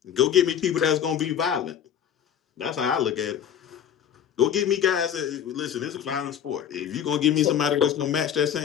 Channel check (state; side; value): quieter; right; 9.1 dB